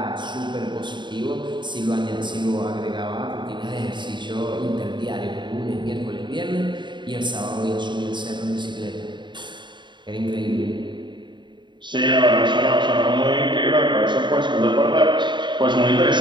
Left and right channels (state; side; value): late; left; 0.22 ms